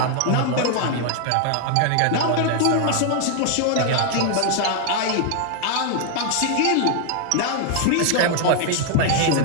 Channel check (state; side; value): different; both; correlation 0.00